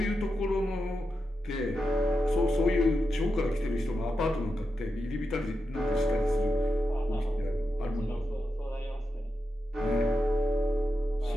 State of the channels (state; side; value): normal; both; correlation 0.88